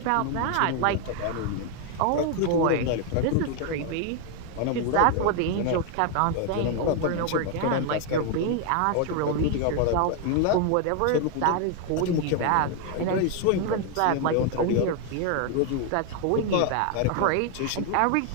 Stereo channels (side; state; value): both; different; correlation 0.01